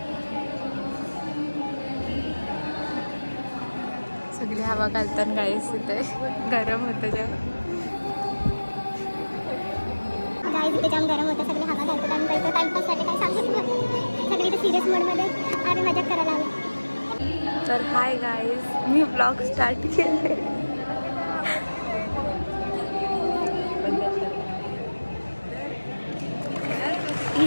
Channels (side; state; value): both; inverted; correlation -1.00